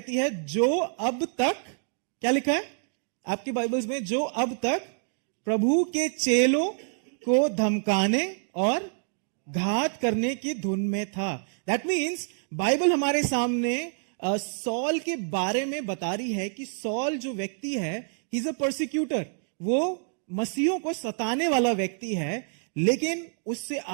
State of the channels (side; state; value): left; silent; 60 dB below the other